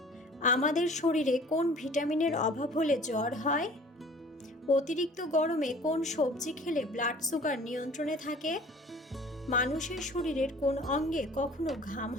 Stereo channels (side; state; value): both; normal; correlation 0.49